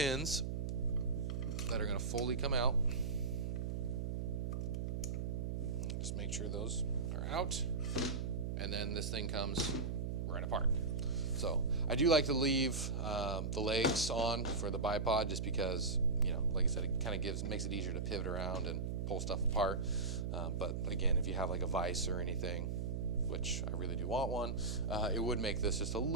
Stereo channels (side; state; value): right; noise; hum, 2 dB below the sound